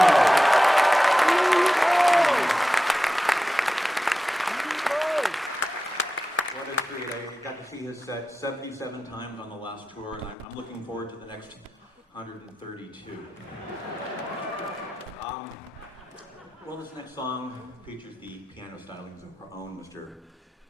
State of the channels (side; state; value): both; normal; correlation 0.93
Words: What a treat. I got to see his set 77 times on the last tour, and I'm looking forward to the next 132. Well, this next song features the piano stylings of our own Mr.